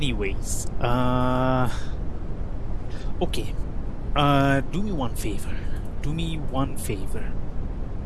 okay. Do me one favor. Do me one favor.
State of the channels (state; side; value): identical; both; correlation 1.00